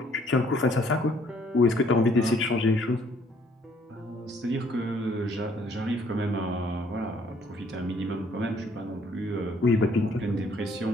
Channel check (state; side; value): normal; both; correlation 0.63